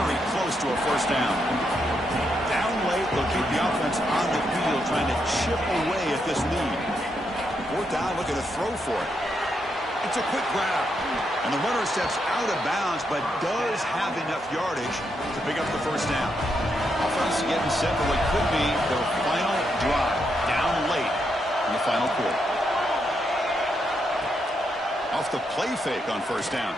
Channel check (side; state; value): both; normal; correlation 0.80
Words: close to a first down. Down late, they'll keep the offense on the field, trying to chip away at this lead. Fourth down, looking to throw for it. It's a quick grab. And the runner steps out of bounds, but does have enough yardage to pick up the first down. Offense getting set for what could be their final drive. Down late in the final quarter. Off the play fake on first down.